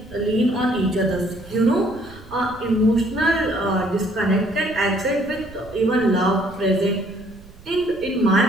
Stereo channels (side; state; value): right; noise; rumble, 21 dB below the sound